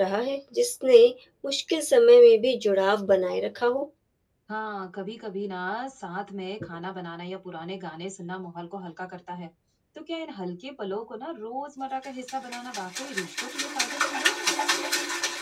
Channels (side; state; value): both; identical; correlation 1.00